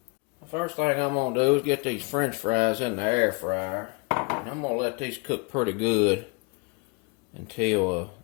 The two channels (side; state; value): right; quieter; 29.7 dB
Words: The first thing I'm going to do is get these french fries in the air fryer. And I'm going to let these cook pretty good until